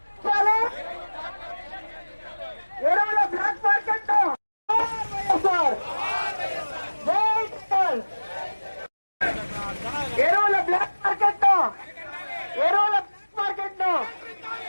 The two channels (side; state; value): both; inverted; correlation -1.00